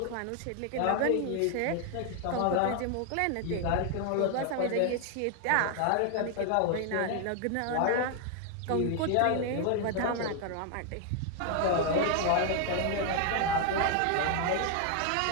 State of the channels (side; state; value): both; different; correlation 0.00